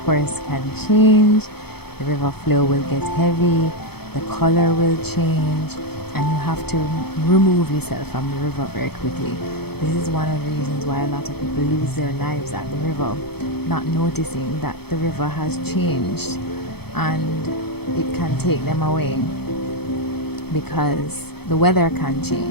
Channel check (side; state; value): right; late; 0.97 ms